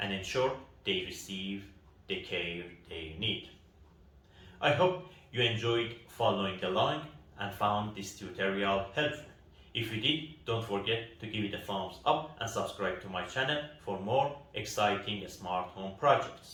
ensure they receive the care they need. I hope you enjoyed following along and found this tutorial helpful. If you did, don't forget to give it a thumbs up and subscribe to my channel for more exciting smart home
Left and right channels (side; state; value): both; identical; correlation 1.00